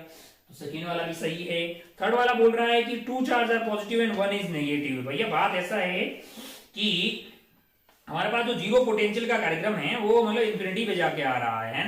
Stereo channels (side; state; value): both; identical; correlation 1.00